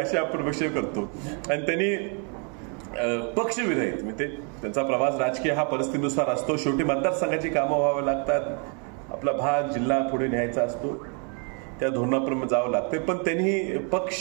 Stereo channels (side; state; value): left; quieter; 38.7 dB